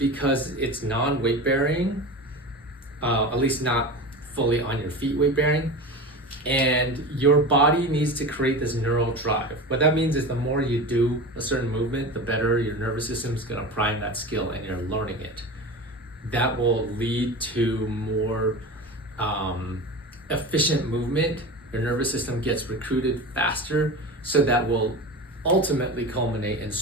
it's non-weight bearing, at least not fully on your feet weight bearing, and your body needs to create this neural drive. What that means is the more you do a certain movement, the better your nervous system is gonna prime that skill and you're learning it. That will lead to more efficient movement. Your nervous system gets recruited faster, so that will ultimately culminate in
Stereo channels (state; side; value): normal; both; correlation 0.29